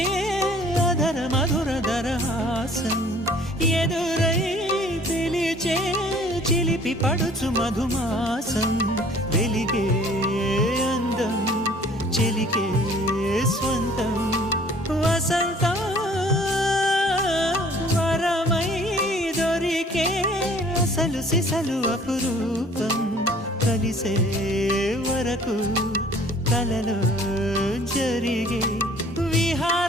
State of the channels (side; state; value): both; normal; correlation 0.54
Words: అధర మధుర దరహాసం ఎదురై పిలిచే చిలిపి పడుచు మధుమాసం వెలిగే అందం చెలికే స్వంతం వసంతం వరమై దొరికే అసలు సిసలు అపురూపం కలిసే వరకు కలలో జరిగే